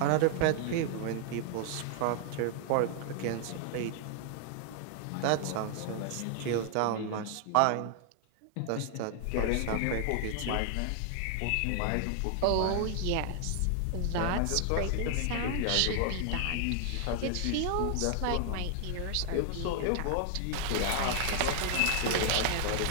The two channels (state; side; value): different; both; correlation 0.00